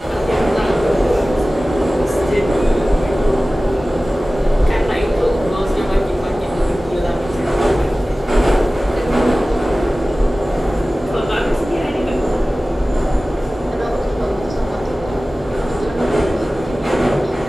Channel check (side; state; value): both; normal; correlation 0.97